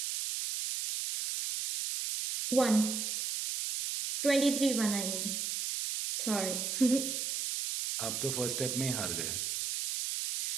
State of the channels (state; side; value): noise; right; hiss, 2 dB below the sound